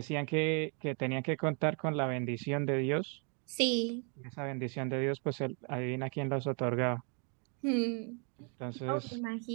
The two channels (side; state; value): left; quieter; 37.5 dB